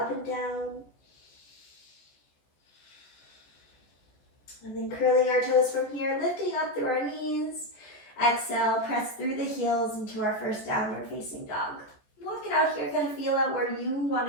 and down. And then curling our toes from here, lifting up through our knees. Exhale, press through the heels into our first downward facing dog. Walk it out here, kind of feel out where you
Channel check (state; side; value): late; right; 14 ms